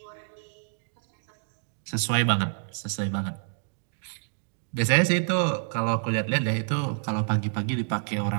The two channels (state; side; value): silent; left; digital silence